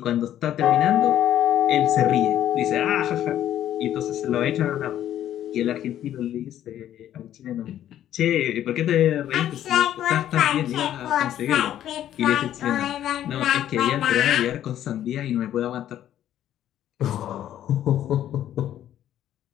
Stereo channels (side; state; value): right; quieter; 11.5 dB